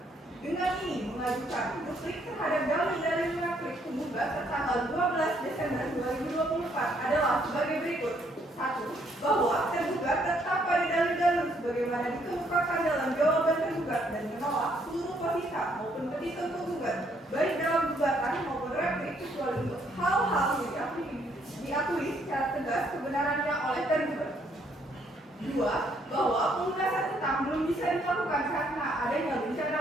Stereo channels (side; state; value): both; normal; correlation 0.69